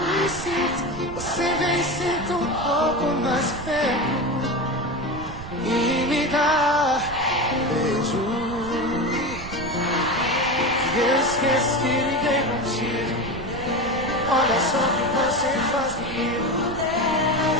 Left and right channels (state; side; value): noise; right; rumble, 11 dB below the sound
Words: certo, você vem e senta um pouco mais perto e me dá um beijo. Eu esqueço que liguei contigo. Olha só o que você faz comigo.